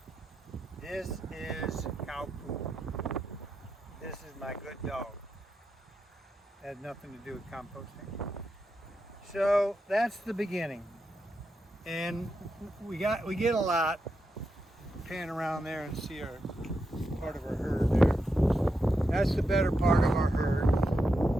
This is cow poo. This is my good dog. It had nothing to do with composting. So that's the beginning. And we get a lot. Pan around there and see our part of our herd there. That's the better part of our herd,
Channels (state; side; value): normal; both; correlation 0.86